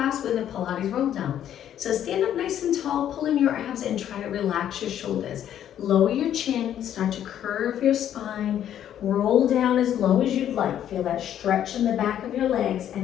with a Pilates roll down. So stand up nice and tall, pull in your abs and try to relax your shoulders. Lower your chin, start to curve your spine, roll down as low as you'd like. Feel that stretch in the back of your legs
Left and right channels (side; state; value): right; quieter; 10.5 dB